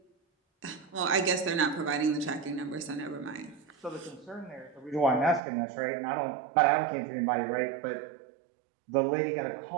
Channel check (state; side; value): drops out; left; at 5.4 s